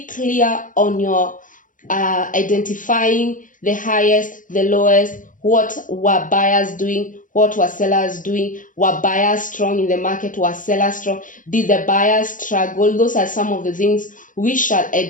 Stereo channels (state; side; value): late; right; 0.38 ms